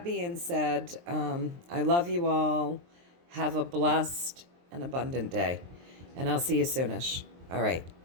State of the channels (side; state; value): left; late; 23 ms